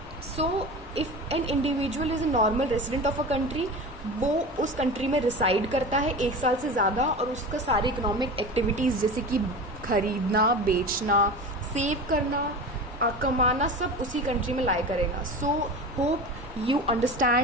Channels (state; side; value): normal; both; correlation 0.30